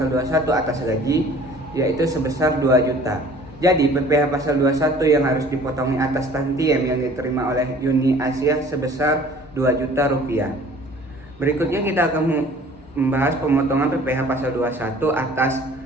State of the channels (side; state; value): both; normal; correlation 0.50